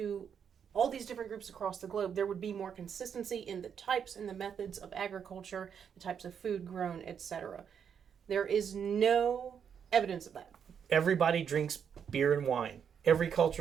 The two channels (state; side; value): quieter; left; 7.6 dB